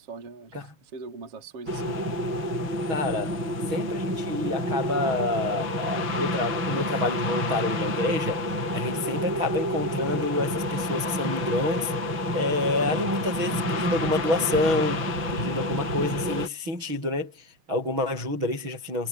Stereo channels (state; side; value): late; left; 6.3 ms